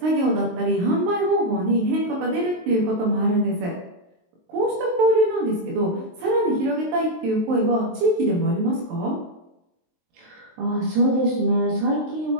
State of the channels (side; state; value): left; late; 23 ms